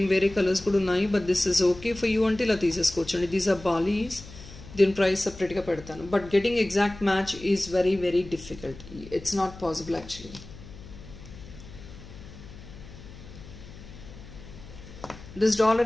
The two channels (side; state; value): left; noise; hum, 16 dB below the sound